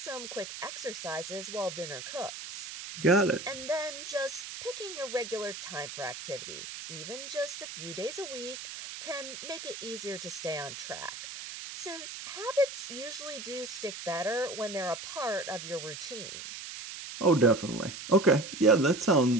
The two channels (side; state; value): right; noise; hiss, 9 dB below the sound